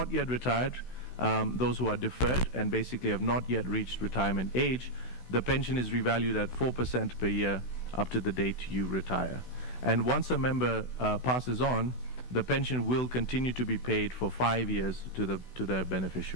yet retired, those who are deferred and basically have not yet reached retirement age, the pension is revalued at 4% per year up to the date you retire. And once a member passes on, the pension will continue to be paid for 5 years to their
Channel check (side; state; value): right; late; 16 ms